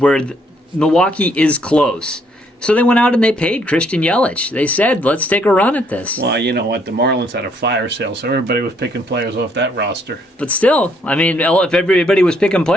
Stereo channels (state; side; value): normal; both; correlation 0.69